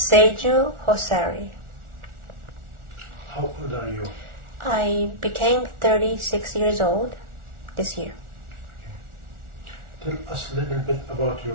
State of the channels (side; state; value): left; late; 1.4 ms